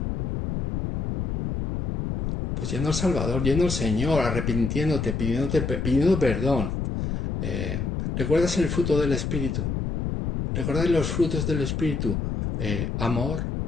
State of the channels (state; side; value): noise; left; rumble, 2 dB below the sound